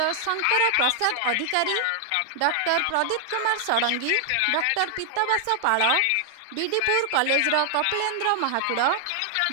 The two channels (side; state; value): both; different; correlation 0.00